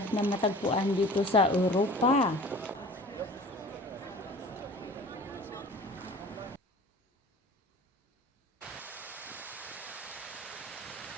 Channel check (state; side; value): normal; both; correlation 0.44